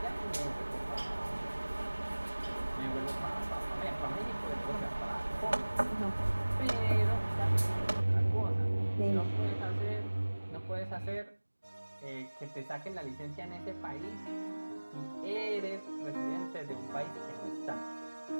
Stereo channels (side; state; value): both; inverted; correlation -1.00